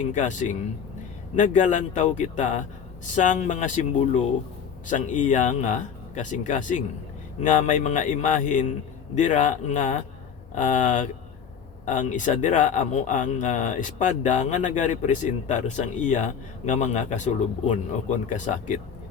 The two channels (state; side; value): quieter; right; 7.2 dB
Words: naggalantaw kita sang mga simbolo sang iya nga kasing-kasing nga may mga imahin dira nga ang isa dira amo ang espada nga nagarepresentar sang iya nga mga kasulubon o kon kasakit.